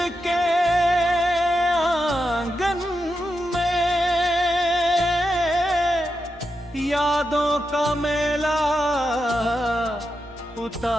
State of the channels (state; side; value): noise; right; hum, 25 dB below the sound